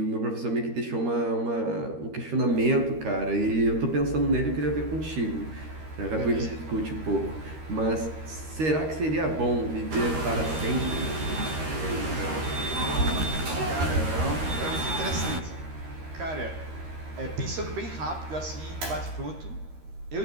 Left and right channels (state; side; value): late; left; 13 ms